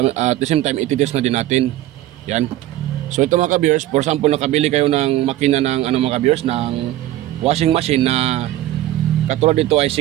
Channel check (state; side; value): quieter; left; 14.6 dB